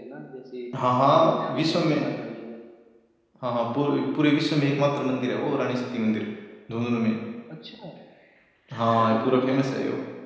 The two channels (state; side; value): identical; both; correlation 1.00